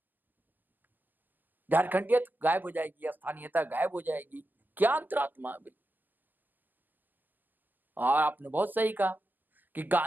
झारखंडियत गायब हो जाएगी, स्थानीयता गायब हो जाएगी, क्या अंतरात्मा अभी। और आपने बहुत सही कहा कि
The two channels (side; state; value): left; late; 0.086 ms